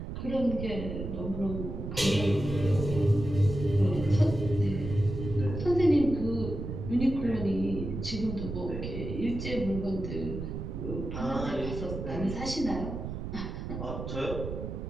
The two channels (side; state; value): right; noise; rumble, 6 dB below the sound